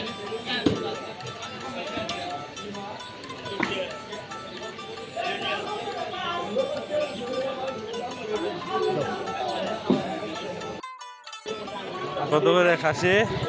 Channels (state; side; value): identical; both; correlation 1.00